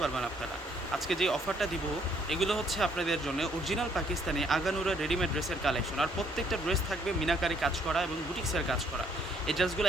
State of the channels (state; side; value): normal; both; correlation 0.66